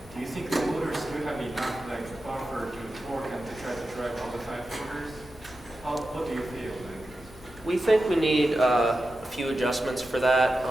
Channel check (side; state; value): both; normal; correlation 0.91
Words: Do you think the motors do have enough like buffer to torque and to try to drive all the 5 fingers? What do you feel like? We think we need a few adjustments for that.